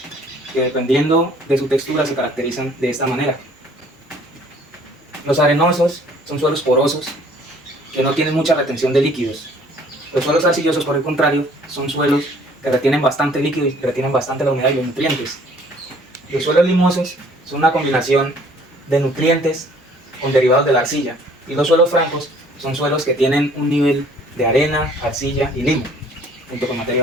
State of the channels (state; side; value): normal; both; correlation 0.57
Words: que dependiendo de su textura se caracterizan de esta manera. Los arenosos son suelos porosos que no tienen mucha retención de líquidos. Los suelos arcillosos, por el contrario, son suelos que retienen bastante líquido y retienen bastante la humedad y los nutrientes. Los suelos limosos son una combinación de nutrientes con derivados de la arcilla, y los suelos francos son suelos que tienen un nivel de arena, arcilla y limo, junto con materia